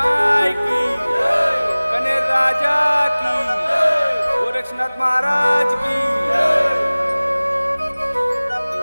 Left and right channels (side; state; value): both; inverted; correlation -0.99